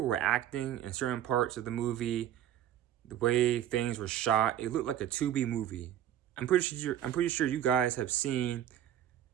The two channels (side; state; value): left; quieter; 11.1 dB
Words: acting in certain parts of the movie, the way things were shot, it looked like a Tubi movie. I'm pretty sure you guys have seen